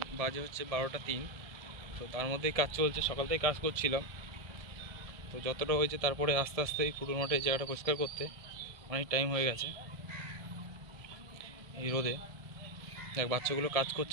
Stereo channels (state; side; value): late; left; 1.6 ms